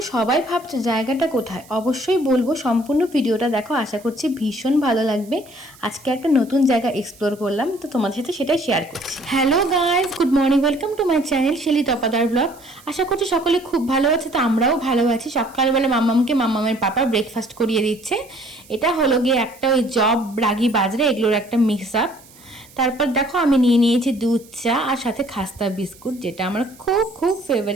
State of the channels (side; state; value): right; noise; hiss, 24 dB below the sound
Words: সবাই ভাবছো জায়গাটা কোথায়, অবশ্যই বলবো। সম্পূর্ণ ভিডিওটা দেখো, আশা করছি ভীষণ ভালো লাগবে। আজকে একটা নতুন জায়গা এক্সপ্লোর করলাম, তো তোমাদের সাথে সেটাই শেয়ার করছি। Hello guys, good morning, welcome to my channel Shelly Tapadar blog. আশা করছি সকলে খুব ভালো আছে, তো আমরাও ভালো আছি। সকালবেলা মাম্মামের পাপা ব্রেকফাস্ট করিয়ে দিচ্ছে। এটা হলো গিয়ে একটা ওই জব রাগি বাজরে এগুলোর একটা মিক্স আপ। তারপর দেখো আমি নিয়ে নিয়েছি দুধ চা আর সাথে খাস্তা বিস্কুট, যেটা আমার খুব খুব